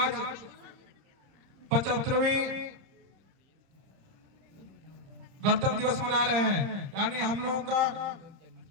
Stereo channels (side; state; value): left; late; 30 ms